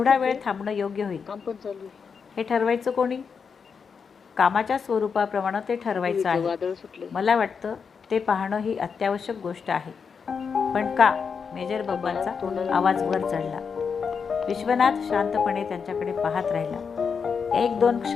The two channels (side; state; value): right; quieter; 6.0 dB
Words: वेळ थांबणं योग्य होईल. हे ठरवायचं कोणी? कामाच्या स्वरूपाप्रमाणे ते ठरवायचं आहे. मला वाटतं ते पाहणं ही अत्यावश्यक गोष्ट आहे. पण का? मेजर बंबांचा आवाज वर चढला. विश्वनाथ शांतपणे त्यांच्याकडे पाहत राहिला. 1-2